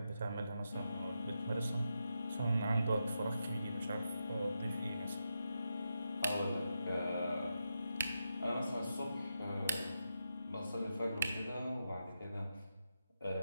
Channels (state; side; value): inverted; both; correlation -0.86